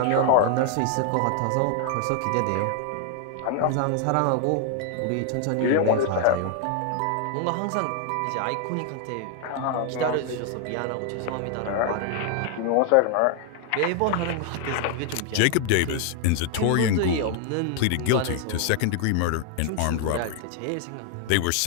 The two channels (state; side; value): different; both; correlation 0.00